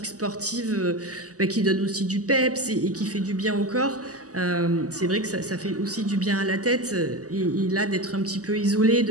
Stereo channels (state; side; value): late; left; 0.67 ms